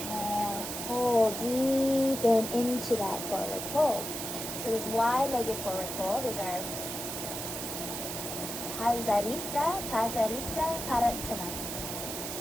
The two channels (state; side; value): noise; right; hiss, 5 dB below the sound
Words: fold, deepen into that forward fold. So this wide-legged forward fold is our Prasarita, Padottanasana.